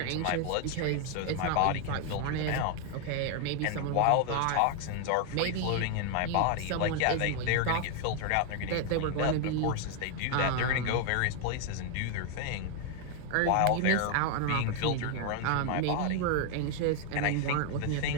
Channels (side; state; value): both; different; correlation 0.01